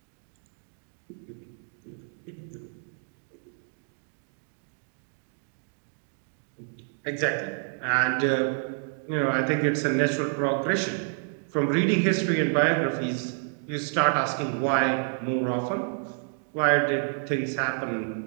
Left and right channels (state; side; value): silent; left; 59 dB below the other